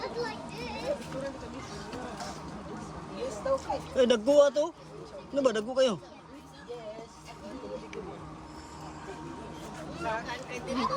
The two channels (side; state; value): both; identical; correlation 1.00